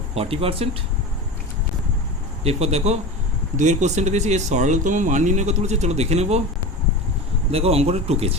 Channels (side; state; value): both; normal; correlation 0.28